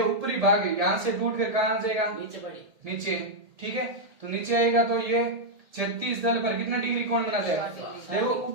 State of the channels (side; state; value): left; late; 1.8 ms